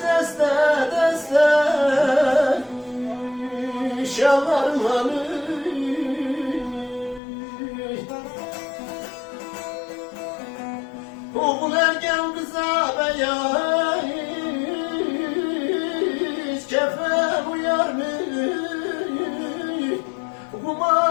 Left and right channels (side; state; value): right; drops out; at 7.2 s